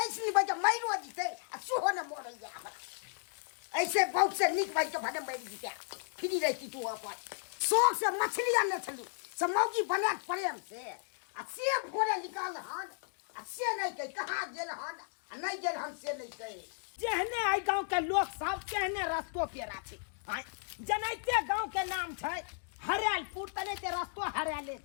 ऐसनी बजे मैरो जीते आ सुहो न मोरैया हमरा ऐसे बहुत से निक भाई के भडम बैठ जीते फ्री रहती तू अपन शौक से मछली आने चलू सब मौगी बना प्रेम से भोरे निकाल हन आ से नहीं कह कहाँ गेल हन आ नहीं गेल हन से नहीं कहे जेहने आई गांव के लोग सब कहने रस्तो पेरा छै जनैते गांव के नाम छै हरियालपुर तने ते रस्तो हरियाले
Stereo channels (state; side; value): silent; right; digital silence